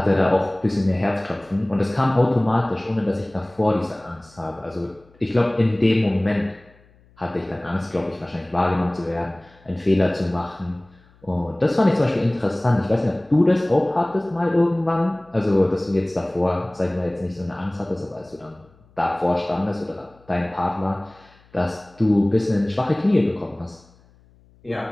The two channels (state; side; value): noise; left; hum, 30 dB below the sound